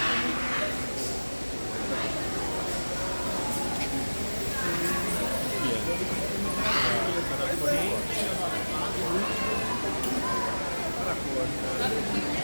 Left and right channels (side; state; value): both; inverted; correlation -1.00